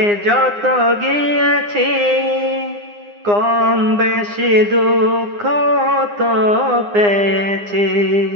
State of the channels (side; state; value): left; late; 9.8 ms